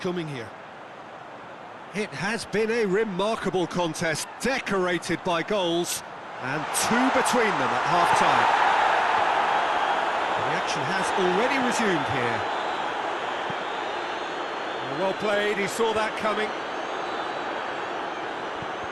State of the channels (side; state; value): both; identical; correlation 1.00